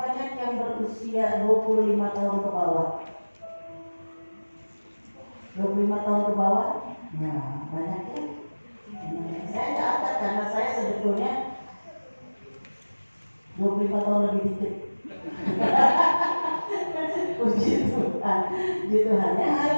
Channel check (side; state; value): both; inverted; correlation -1.00